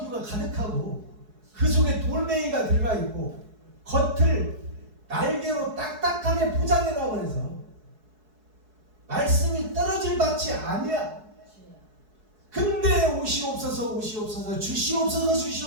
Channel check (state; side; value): late; left; 4.7 ms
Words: 가득하고 그 속에 돌멩이가 들어가 있고 겉을 날개로 딱딱하게 포장해 놔버려서 말씀이 떨어질 밭이 아니야. 근데 오시옵소서 오시옵소서 주시옵소서